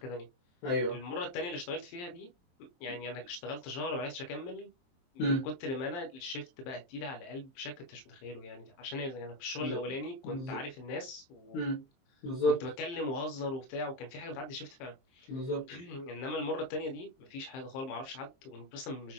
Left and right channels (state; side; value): late; right; 23 ms